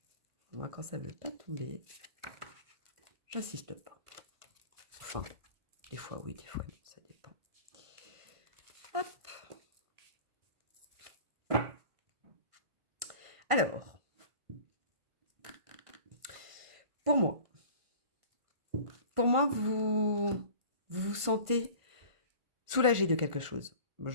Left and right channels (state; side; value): late; left; 1.5 ms